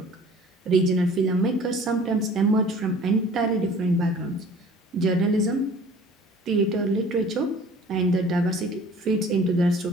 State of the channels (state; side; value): normal; both; correlation 0.48